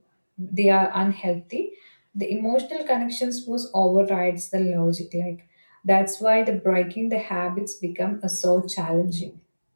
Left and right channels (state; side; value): inverted; both; correlation -1.00